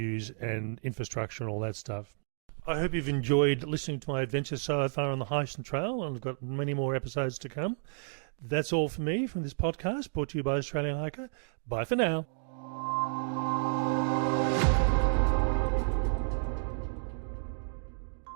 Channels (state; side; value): silent; left; digital silence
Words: and infrastructure and all that stuff. I hope you've enjoyed listening to my adventure so far on the Heysen Trail, and I've got many more episodes to come. That's all for me from this podcast, brought to you by Australian Hiker. Bye for now.